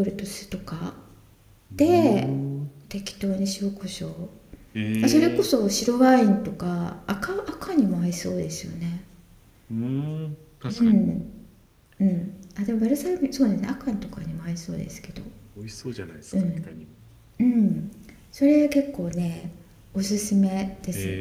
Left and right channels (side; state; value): both; identical; correlation 1.00